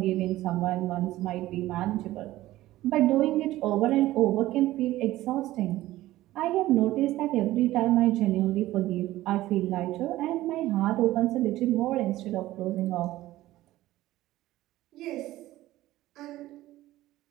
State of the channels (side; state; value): left; quieter; 16.0 dB